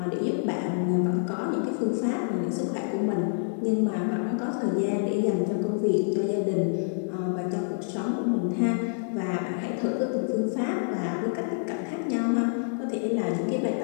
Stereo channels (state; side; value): silent; right; digital silence